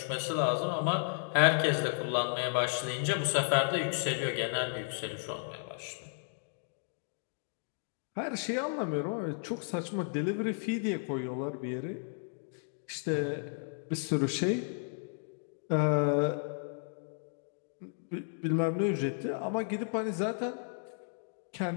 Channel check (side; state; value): right; silent; digital silence